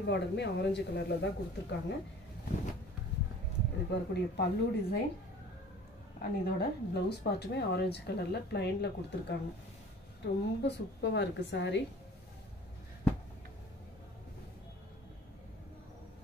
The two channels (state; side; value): normal; both; correlation 0.46